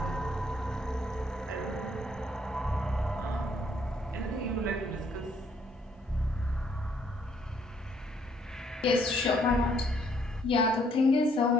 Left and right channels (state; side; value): normal; both; correlation 0.67